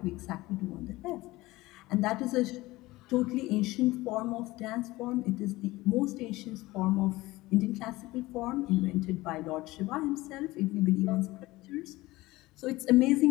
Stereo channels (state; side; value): quieter; right; 19.3 dB